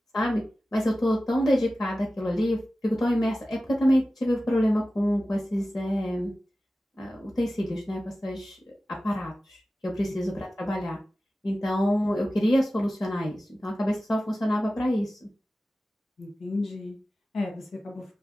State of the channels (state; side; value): normal; both; correlation 0.95